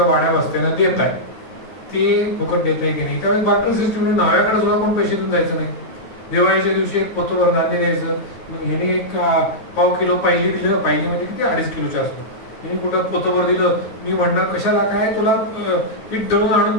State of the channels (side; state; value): right; late; 8.9 ms